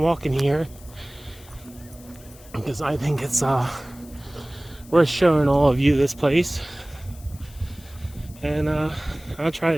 walking here because I think it's worth showing all of you this place. And I'll try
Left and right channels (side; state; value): left; noise; hiss, 22 dB below the sound